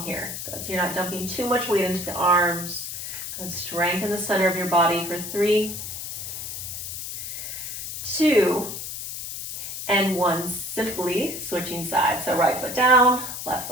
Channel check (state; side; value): noise; left; hiss, 7 dB below the sound